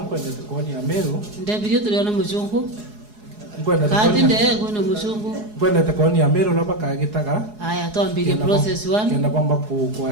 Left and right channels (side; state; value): left; late; 4.8 ms